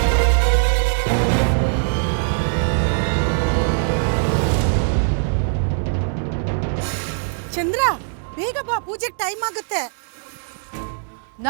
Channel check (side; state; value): left; silent; 63 dB below the other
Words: ಚಂದ್ರ, ಬೇಗ ಬಾ, ಪೂಜೆಗೆ ಟೈಮ್ ಆಗುತ್ತೆ.